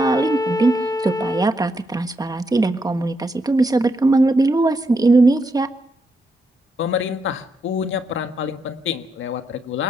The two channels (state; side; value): normal; both; correlation 0.80